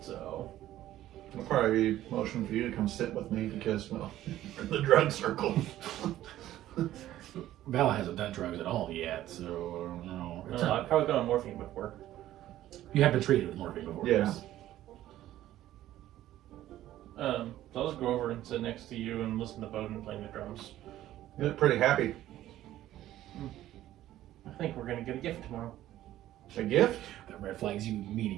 So. It'll probably be motion for you to come sit with me because, well, we're in the drug circle. Val hasn't done drugs at all yet, so I don't know. It's I've probably been on morphine before. You have been treated with morphine before. Yeah. yes. So I'll just go over and sit next to you and listen to Boden playing the drums. You look pretty happy. I think we're gonna get a gift tomorrow. A gift? That red flags you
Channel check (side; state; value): left; quieter; 13.7 dB